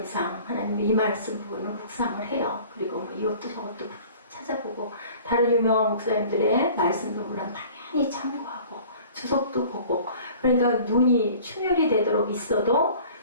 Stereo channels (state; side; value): inverted; both; correlation -0.47